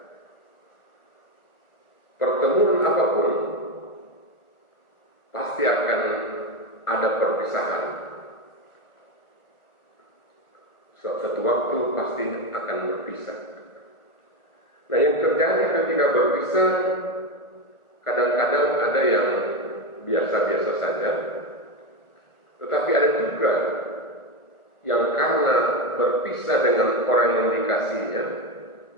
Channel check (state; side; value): late; right; 1.4 ms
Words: Pertemuan apapun pasti akan ada perpisahan. Suatu waktu pasti akan berpisah. Nah, yang terjadi ketika berpisah, kadang-kadang ada yang biasa-biasa saja, tetapi ada juga yang karena berpisah dengan orang yang dikasihinya,